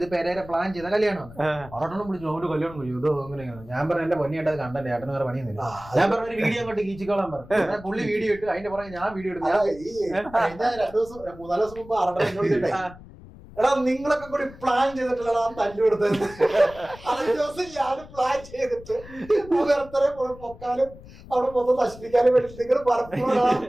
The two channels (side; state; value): left; noise; rumble, 18 dB below the sound